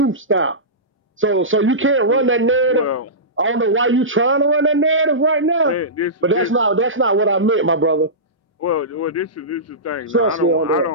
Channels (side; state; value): both; normal; correlation -0.19